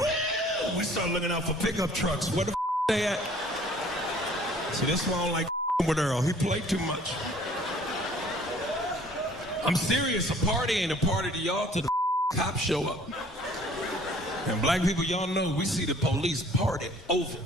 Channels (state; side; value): normal; both; correlation 0.54